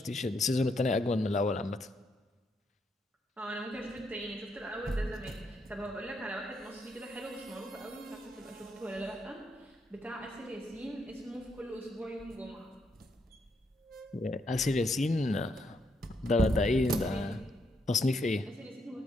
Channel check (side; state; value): both; normal; correlation 0.77